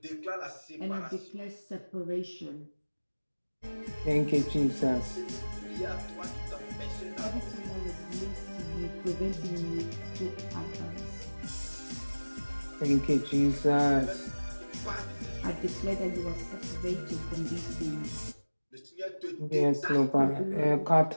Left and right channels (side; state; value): both; inverted; correlation -1.00